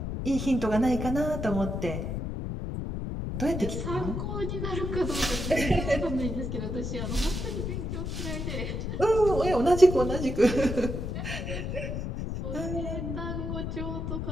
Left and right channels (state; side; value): noise; left; rumble, 3 dB below the sound